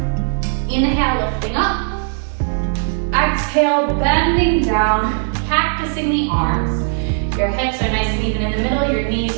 Inhale, lifting up. Exhale, bending down, cactusing the arms. Your hips are nice and even in the middle. Your knees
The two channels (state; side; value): silent; left; 56 dB below the other